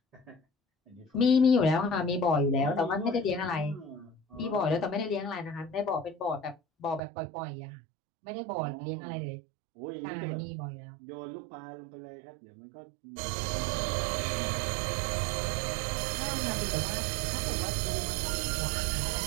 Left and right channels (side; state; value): left; drops out; at 7.0 s